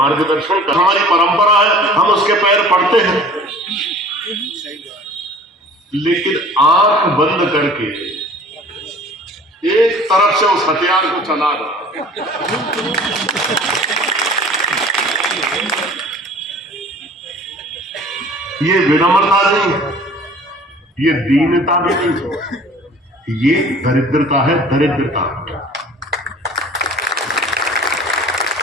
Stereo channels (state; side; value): normal; both; correlation 0.47